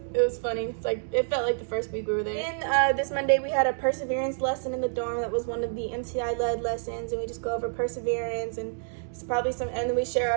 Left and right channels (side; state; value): left; silent; digital silence